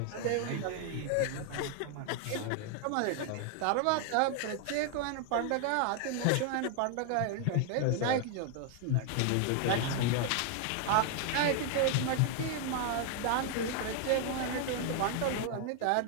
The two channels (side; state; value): both; different; correlation 0.00